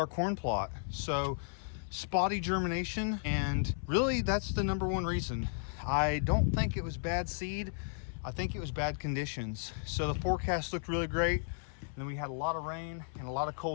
corn plot. So spotty germination, and really that's the number one reason. I don't think it was bad seed. I think it was bad conditions. So the forecast looked really great, and then we had a lot of rain and a lot of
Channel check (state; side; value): silent; right; 55 dB below the other